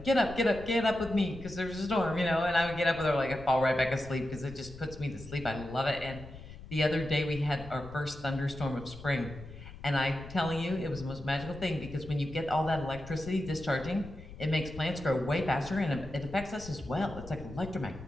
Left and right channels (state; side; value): noise; left; rumble, 15 dB below the sound